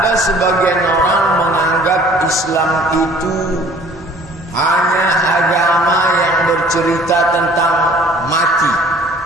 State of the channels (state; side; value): normal; both; correlation 0.52